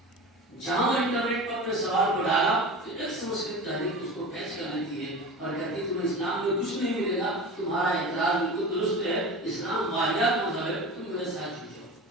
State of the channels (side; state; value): both; normal; correlation 0.32